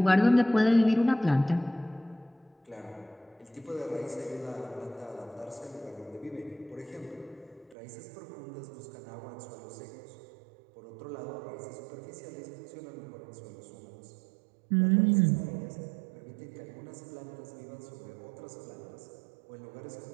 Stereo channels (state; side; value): drops out; left; at 7.8 s